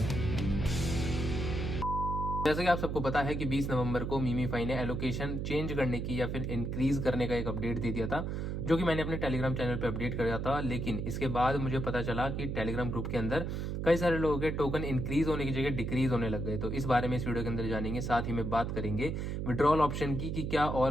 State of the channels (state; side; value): noise; right; hum, 2 dB below the sound